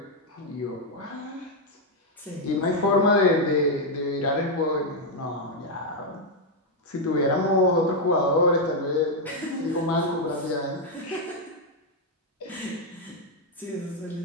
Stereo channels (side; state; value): both; normal; correlation 0.01